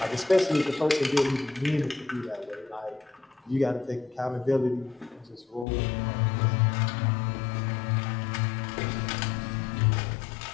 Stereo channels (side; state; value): right; drops out; at 5.7 s